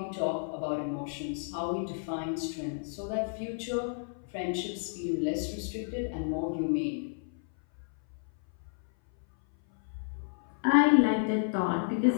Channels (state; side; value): silent; right; 57 dB below the other